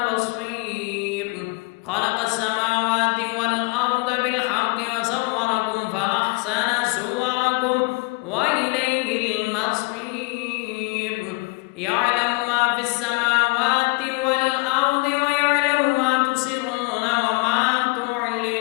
بصير. خلق السماوات والأرض بالحق وصوركم فأحسن صوركم وإليه المصير. يعلم ما في السماوات والأرض ويعلم ما تسرون وما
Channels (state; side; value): quieter; right; 26.7 dB